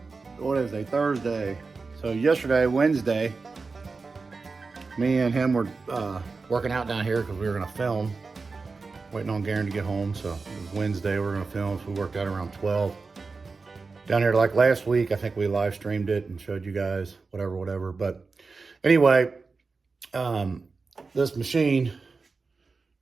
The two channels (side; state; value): left; quieter; 4.3 dB